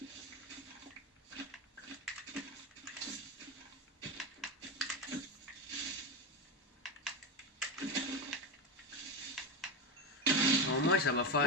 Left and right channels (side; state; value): both; normal; correlation 0.15